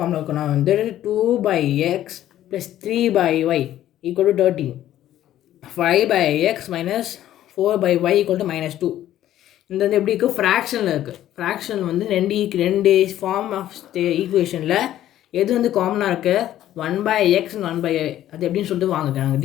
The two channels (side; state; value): right; quieter; 12.6 dB